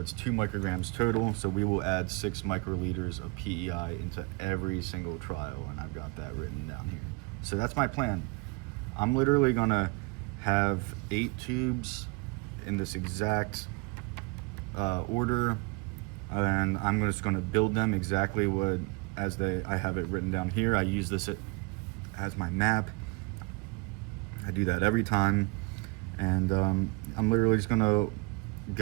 2 micrograms total. So we will add 6 microliters of PEI into every single trial, and I've got that written down here. So that's my plan. I'm literally gonna have 8 tubes in this exact order, and I'm just gonna build them exactly I have it written down here. I use this as my map. I do that every time, and I'm literally just gonna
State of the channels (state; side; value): quieter; left; 28.3 dB